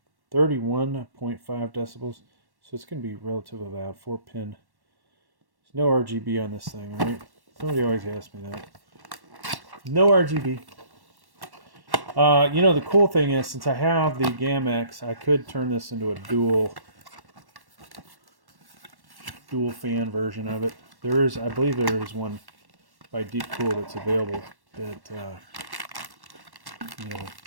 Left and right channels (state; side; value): late; left; 1.1 ms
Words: decibels. So it's going to be relatively loud. 4-pin. There's no RGB on this thing, right? Somebody always asks me that. No RGB. The cool thing is, since I have the GAMMAXX, I could turn this into a dual fan version of it. There is, I believe there is one by DeepCool that's available that,